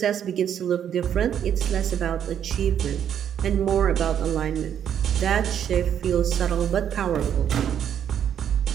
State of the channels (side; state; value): left; quieter; 9.2 dB